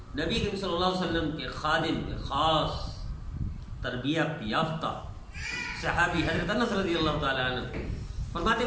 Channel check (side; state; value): both; identical; correlation 1.00